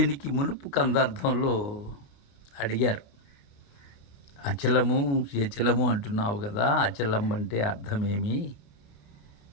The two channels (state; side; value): late; right; 28 ms